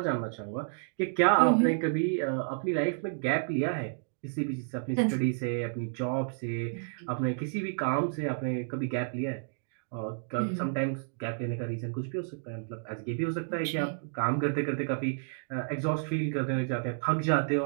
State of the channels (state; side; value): silent; left; digital silence